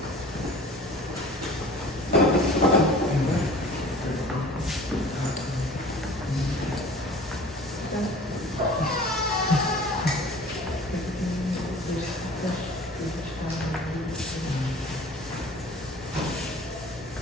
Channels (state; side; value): normal; both; correlation 0.45